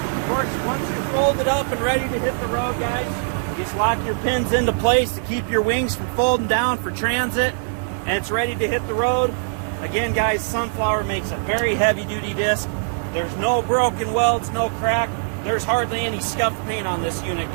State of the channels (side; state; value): left; silent; digital silence